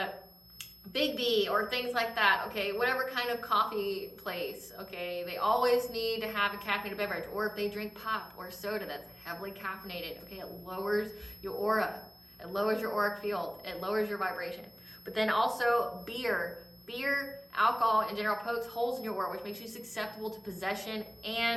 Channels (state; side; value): identical; both; correlation 1.00